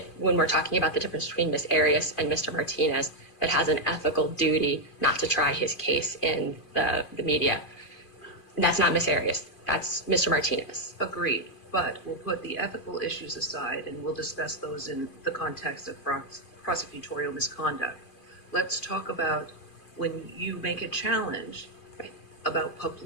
when we're talking about the difference between Ms. Arias and Mr. Martinez that has an ethical duty not to try his case in the media. And that's not Ms. Arias. That's Mr. Martinez. Agreed. But we'll put the ethical issues aside and we'll discuss those in the context of prosecutorial misconduct. Let's talk about when you make a challenge about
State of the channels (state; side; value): late; right; 2.4 ms